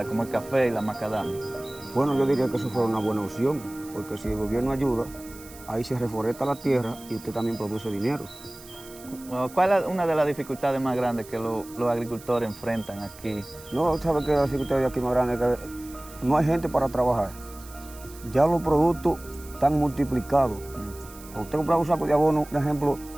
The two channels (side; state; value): right; noise; hiss, 19 dB below the sound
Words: como el café y la macadamia? Bueno, yo diría que eso fuera una buena opción, porque si el gobierno ayuda, ahí se reforesta la tierra y usted también produce dinero. ¿Cuál es una de las dificultades más grandes que los agricultores enfrentan aquí? No, ¿sabe qué? La dificultad de aquí más grande es que no hay gente para trabajar. Ya los productos están multiplicados. Cuando usted compra un saco de abono, por ejemplo,